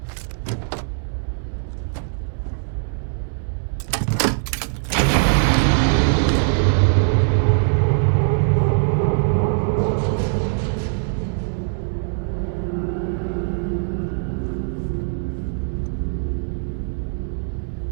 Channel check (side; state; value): left; silent; digital silence